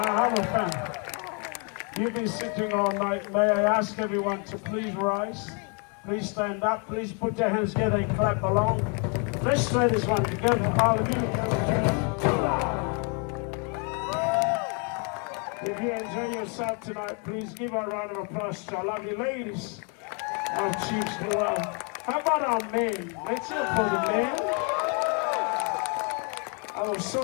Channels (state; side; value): quieter; right; 36.9 dB